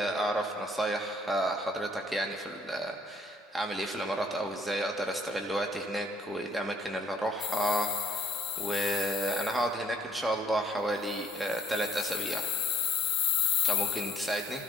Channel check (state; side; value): normal; both; correlation 0.61